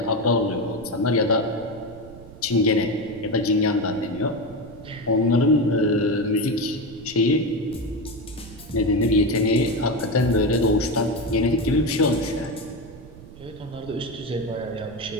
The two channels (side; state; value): right; noise; rumble, 18 dB below the sound